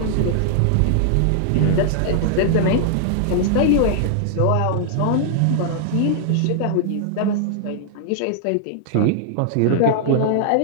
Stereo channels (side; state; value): both; different; correlation -0.01